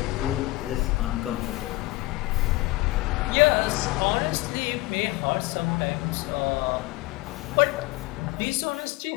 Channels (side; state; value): right; quieter; 20.3 dB